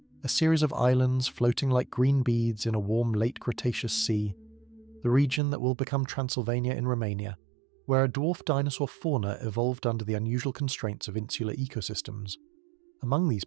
a series of islands floating like green beads in a warm late Cretaceous sea, the region that will become Transylvania in Romania, where a dwarf dinosaur fauna evolved under the unusual constraints of insular ecosystems. Among these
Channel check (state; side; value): drops out; left; at 5.4 s